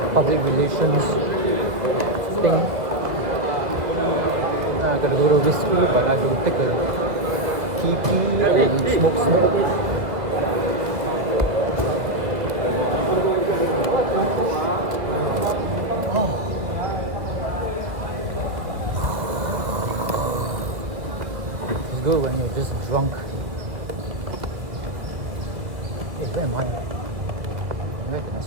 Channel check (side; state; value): left; late; 1.9 ms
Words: public relations thing. I gotta go to whiskey, but I will take a TP and smoke. It's good when you're just drunk. Hey, where am I? Where can I